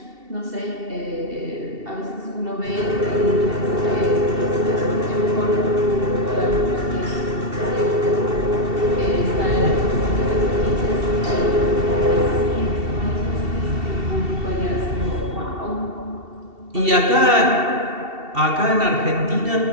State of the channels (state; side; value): late; left; 2.7 ms